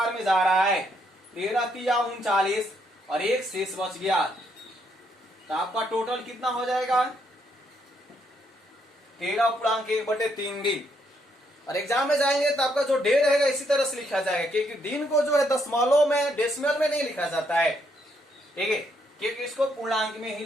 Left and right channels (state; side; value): normal; both; correlation 0.74